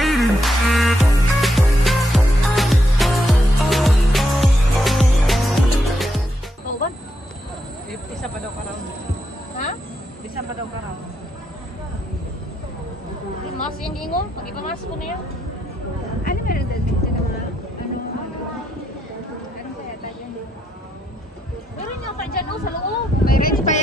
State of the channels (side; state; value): both; normal; correlation 0.80